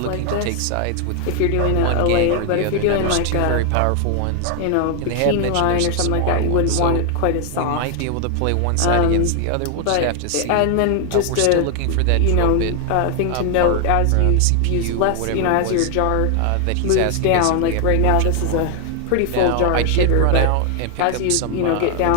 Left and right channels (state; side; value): different; both; correlation 0.00